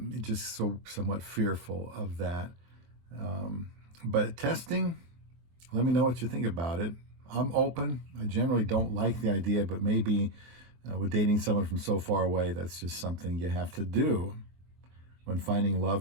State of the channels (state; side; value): late; left; 23 ms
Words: just somewhat fearful of that. But testing, let me know what you think about it. I'm open. I generally don't like the idea, but maybe with dating someone from so far away, that's just something you have to do when finding